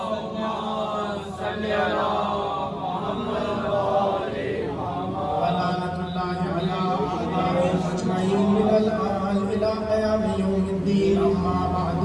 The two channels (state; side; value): identical; both; correlation 1.00